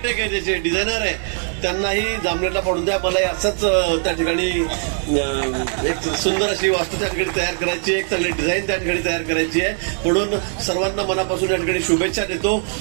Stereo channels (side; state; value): left; silent; 65 dB below the other